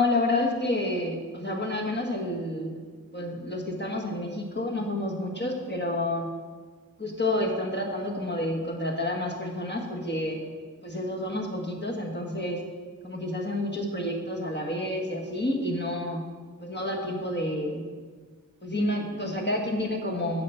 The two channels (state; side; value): normal; both; correlation 0.29